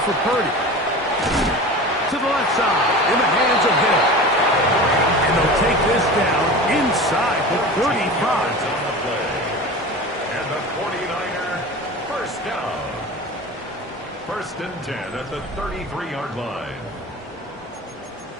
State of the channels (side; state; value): both; normal; correlation 0.33